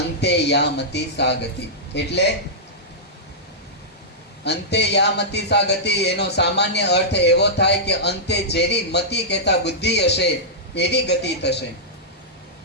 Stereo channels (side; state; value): both; normal; correlation -0.12